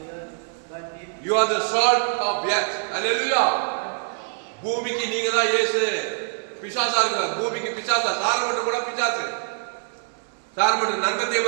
You are the salt of the earth. Hallelujah. பூமிக்கு நீங்க தான் இயேசு. பிசாசா இருக்கு பூமிக்கு பிசாசா. சாரமட்டம் கூட பிசாசு. சாரமட்டம் நன்மத்தை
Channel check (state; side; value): silent; left; 61 dB below the other